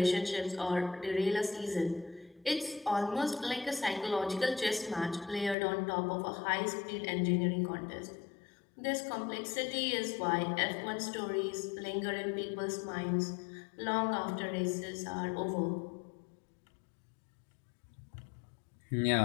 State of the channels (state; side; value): drops out; right; at 5.6 s